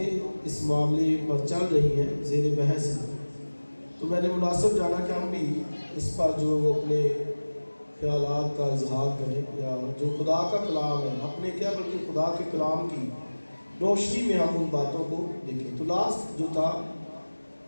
اس معاملے پر چل رہی ہیں، زیر بحث ہیں. تو میں نے مناسب جانا کہ ہم بھی اس پر جو وہ اپنے خیالات کا اظہار کریں، یا جو خدا کا کلام ہے، اپنے کیا بلکہ خدا کے کلام کی روشنی میں ہم ان باتوں کو دیکھیں. تو لاسٹ جو تھا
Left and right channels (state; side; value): inverted; both; correlation -1.00